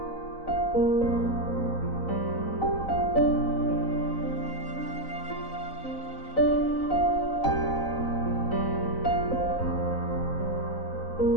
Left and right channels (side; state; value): right; late; 4.0 ms